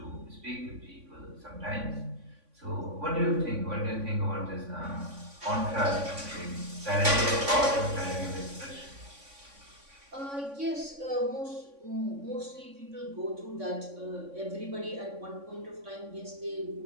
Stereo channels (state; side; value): late; left; 3.6 ms